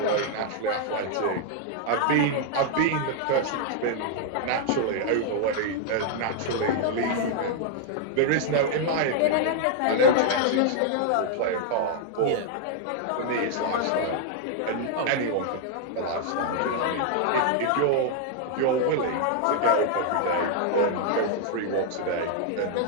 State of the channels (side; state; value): both; different; correlation 0.00